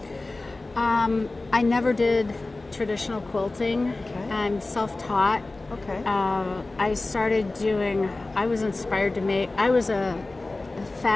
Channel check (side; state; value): right; quieter; 3.1 dB